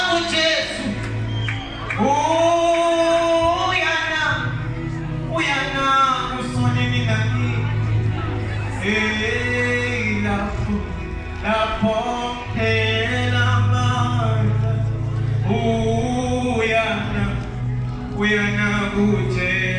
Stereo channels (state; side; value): identical; both; correlation 1.00